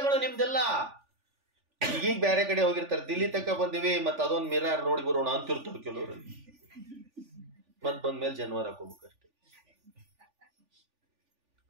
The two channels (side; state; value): left; late; 3.4 ms